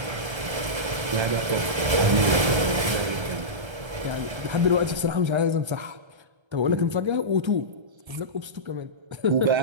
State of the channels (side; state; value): left; late; 1.3 ms